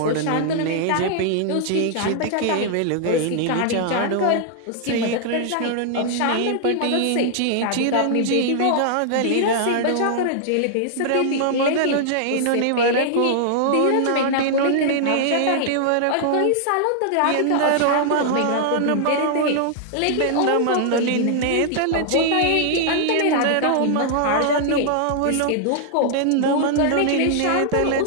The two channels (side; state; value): both; different; correlation -0.01